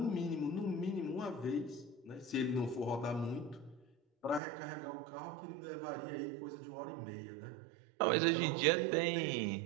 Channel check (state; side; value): drops out; left; at 4.4 s